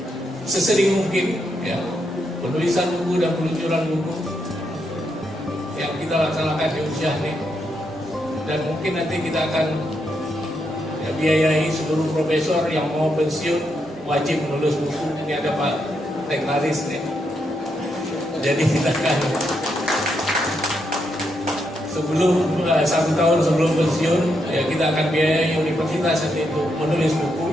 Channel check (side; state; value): both; normal; correlation 0.80